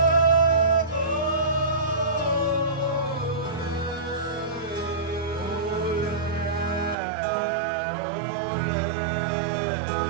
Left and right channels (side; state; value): left; drops out; at 7.0 s